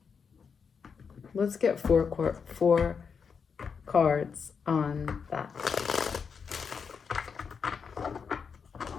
Let's get four cards on that.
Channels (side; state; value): right; quieter; 6.1 dB